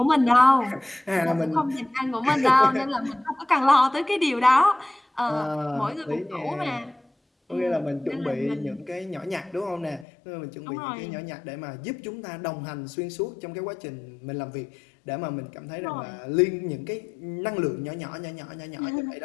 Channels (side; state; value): right; drops out; at 10.1 s